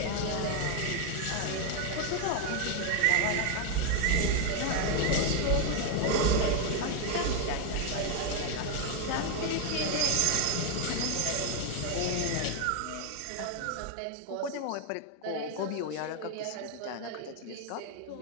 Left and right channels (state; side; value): different; both; correlation 0.01